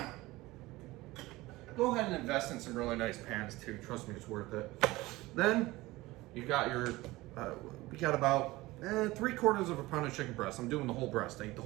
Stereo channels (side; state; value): left; quieter; 19.5 dB